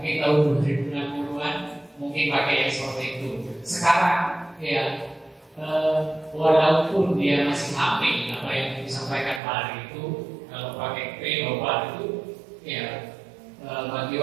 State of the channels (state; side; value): drops out; left; at 9.4 s